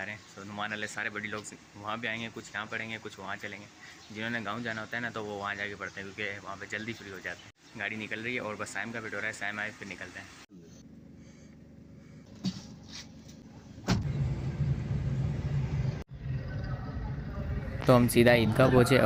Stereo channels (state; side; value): identical; both; correlation 1.00